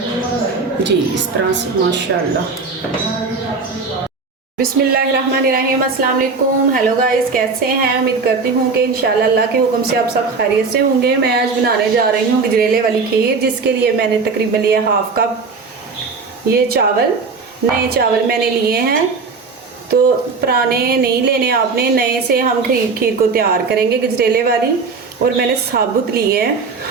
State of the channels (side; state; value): left; quieter; 4.6 dB